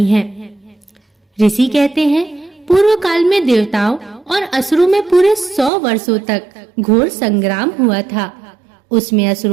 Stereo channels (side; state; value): left; drops out; at 5.7 s